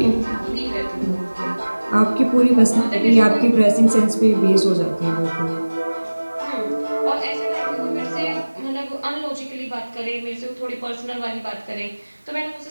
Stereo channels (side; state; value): both; inverted; correlation -1.00